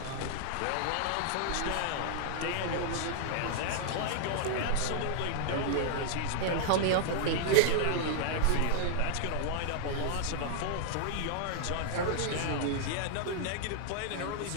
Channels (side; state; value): both; different; correlation 0.00